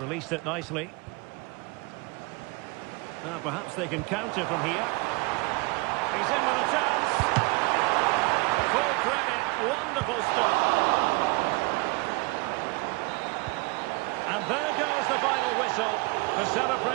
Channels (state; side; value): quieter; left; 26.6 dB